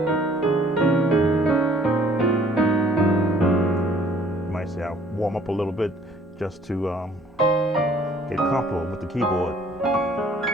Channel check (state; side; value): normal; both; correlation 0.57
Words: might say I'll warm up a little bit just to get comfortable with the keyboard.